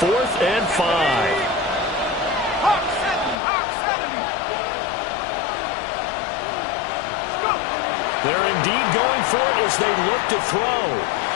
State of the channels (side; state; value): right; drops out; at 3.4 s